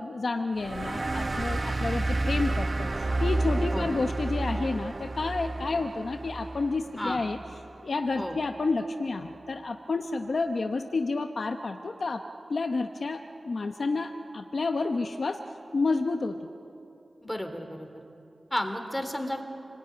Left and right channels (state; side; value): normal; both; correlation 0.95